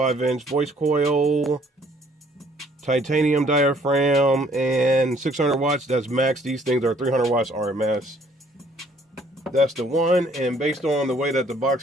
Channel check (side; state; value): both; normal; correlation 0.62